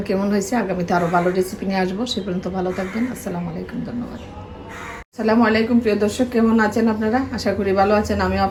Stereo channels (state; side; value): identical; both; correlation 1.00